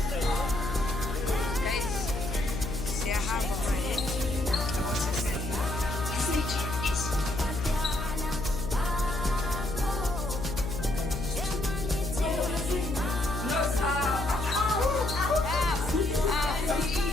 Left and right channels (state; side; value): noise; left; hum, 5 dB below the sound